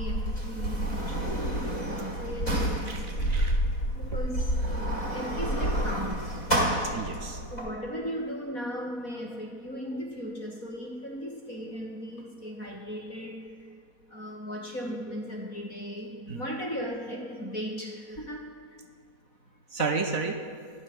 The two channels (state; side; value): late; right; 4.0 ms